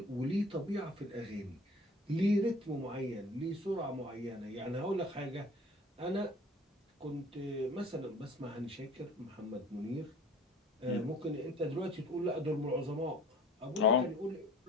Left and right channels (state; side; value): normal; both; correlation 0.47